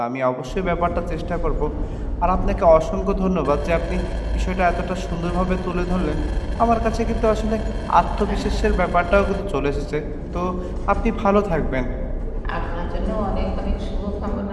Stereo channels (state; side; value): identical; both; correlation 1.00